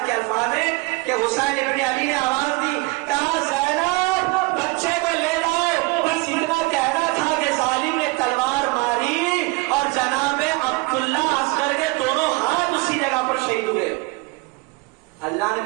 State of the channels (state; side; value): quieter; left; 25.5 dB